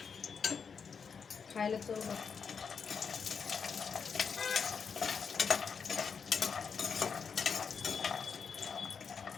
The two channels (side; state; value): right; quieter; 6.1 dB